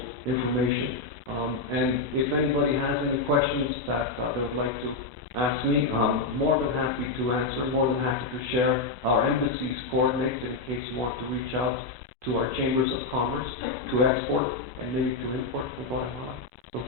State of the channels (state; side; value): quieter; right; 3.6 dB